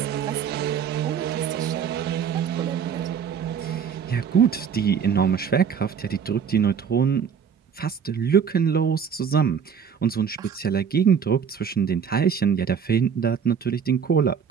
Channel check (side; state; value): left; quieter; 7.1 dB